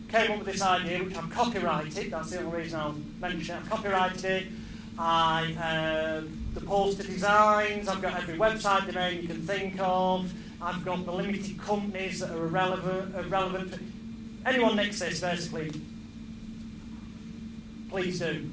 came up with this idea, which I've copyrighted. That's the only reason I'll mention it. I've copyrighted it. The poster designs, I've got every website domain you can think of. I've got the limited companies that are irrelevant. Anyone nicks this, basically, please do,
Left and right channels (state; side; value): identical; both; correlation 1.00